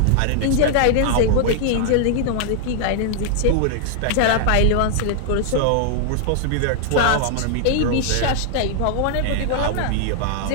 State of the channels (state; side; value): different; both; correlation -0.01